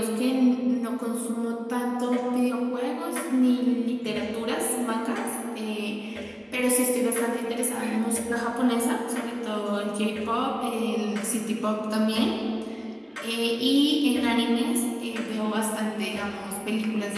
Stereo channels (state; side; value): identical; both; correlation 1.00